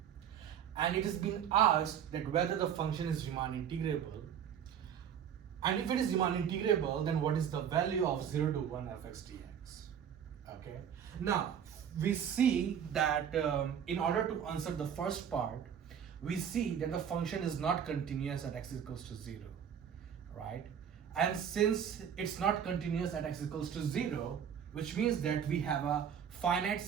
And it has been asked that whether the function is Riemann integrable, and if it is Riemann integrable, then what is the value of 0 to 1 fx dx? Okay. Now we see that in order to answer the first part, we see that the function is not continuous at x equals to 0, right? And since it's not continuous at x equals to 0, which means that we have a finite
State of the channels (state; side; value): quieter; left; 8.5 dB